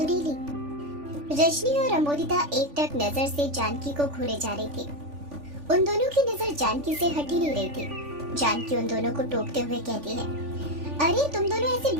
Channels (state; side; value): late; left; 3.5 ms